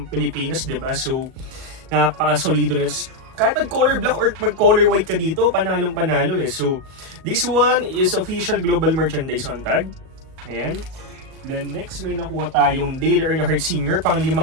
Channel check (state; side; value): late; left; 38 ms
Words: Pilipinas, diba? So, napaka-solido na. Kahit mag-color black or mag-color white ka dito, panalong-panalo eh. So, this one is official global merchandise on tag. Ayan. Then next, may nakuha tayong Dale Earnhardt Sr. Pang 5